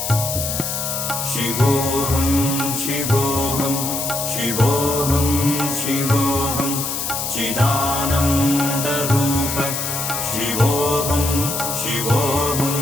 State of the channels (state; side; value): noise; left; hiss, 3 dB below the sound